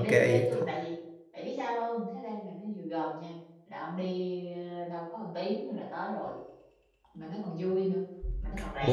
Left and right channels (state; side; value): identical; both; correlation 1.00